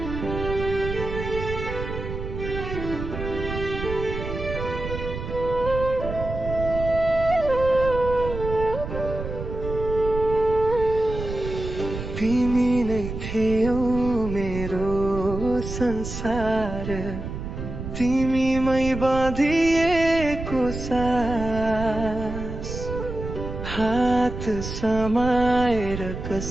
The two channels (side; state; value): right; noise; rumble, 7 dB below the sound